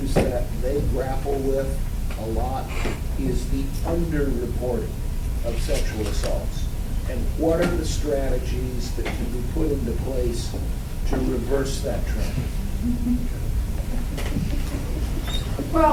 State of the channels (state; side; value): identical; both; correlation 1.00